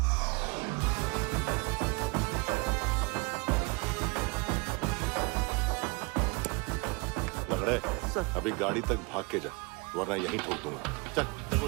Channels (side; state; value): left; quieter; 28.0 dB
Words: लंगड़े, अभी गाड़ी तक भाग के जा, वरना यहीं ठोक दूंगा। चल।